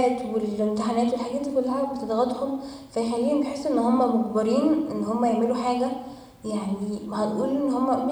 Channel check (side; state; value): both; identical; correlation 1.00